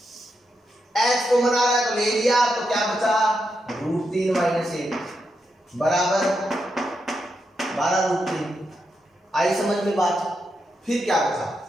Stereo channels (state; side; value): normal; both; correlation 0.84